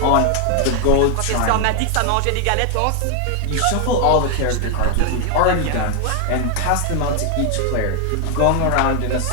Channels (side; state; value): both; different; correlation 0.00